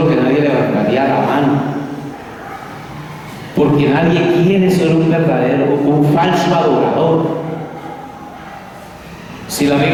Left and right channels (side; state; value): both; identical; correlation 1.00